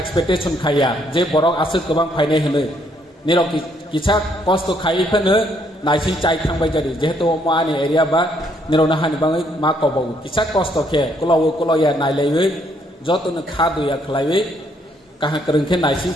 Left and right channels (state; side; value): normal; both; correlation 0.70